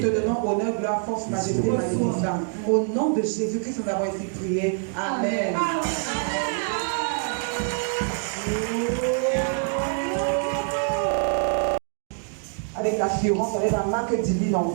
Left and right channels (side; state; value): left; silent; 56 dB below the other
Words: donnons honneur, gloire, force, majesté, magnificence. Au nom de Jésus-Christ, nous avons ainsi prié. Amen. Avec l'assurance, avec la marque divine en